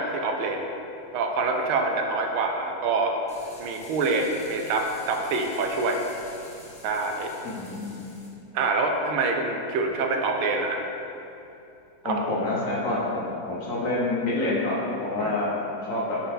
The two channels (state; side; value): normal; both; correlation -0.04